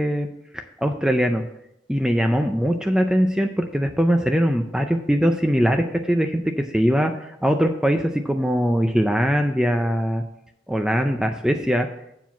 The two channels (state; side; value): normal; both; correlation 0.92